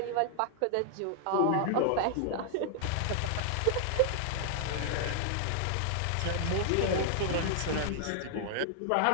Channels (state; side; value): different; both; correlation -0.01